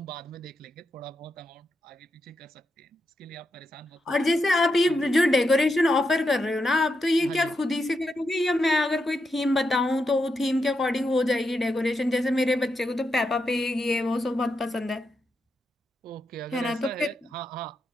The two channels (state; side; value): normal; both; correlation 0.85